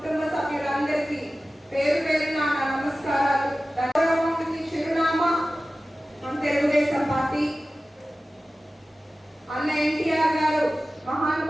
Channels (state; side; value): normal; both; correlation 0.96